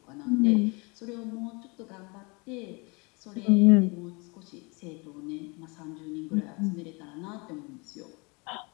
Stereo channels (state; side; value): quieter; right; 29.3 dB